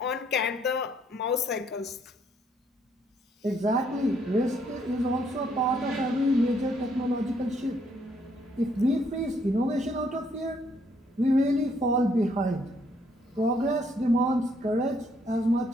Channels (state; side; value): normal; both; correlation 0.69